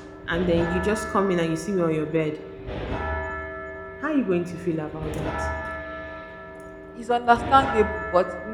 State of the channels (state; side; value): identical; both; correlation 1.00